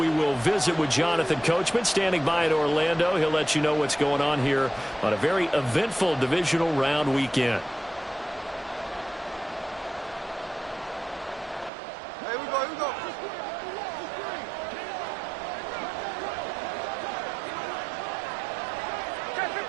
will visit with Jonathan Coachman, standing by in Orlando. He'll let you know what's going on here on a very eventful Divisional Round weekend. Here we go, here we go.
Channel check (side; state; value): left; drops out; at 11.7 s